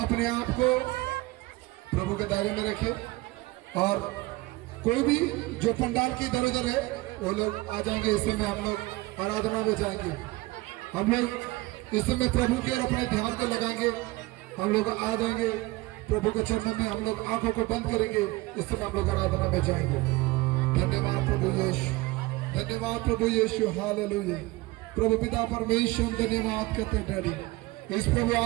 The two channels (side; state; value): left; quieter; 21.3 dB